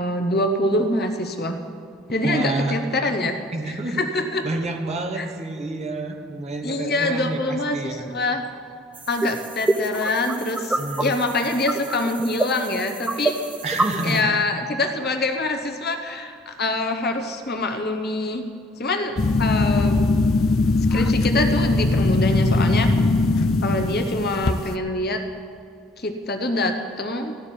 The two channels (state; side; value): normal; both; correlation 0.57